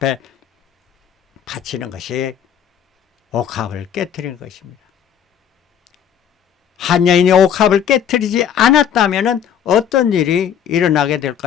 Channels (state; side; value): quieter; right; 8.9 dB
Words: 바치는 것이 옥합을 깨뜨리는 것입니다. 한 여인이 옥합을 깨뜨리지 않았다면 어떤 일이 일어나게